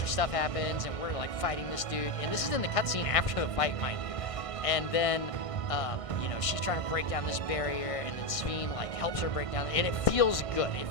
of stuff happens, and we're like fighting this dude, and this is in the cutscene after the fight, mind you. And then, she's trying to break down this barrier, and then Sphyn like helps her break down, and it feels good. It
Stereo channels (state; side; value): late; right; 1.6 ms